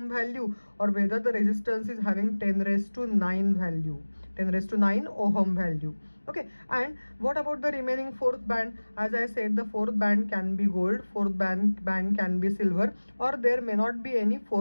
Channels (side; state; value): both; inverted; correlation -1.00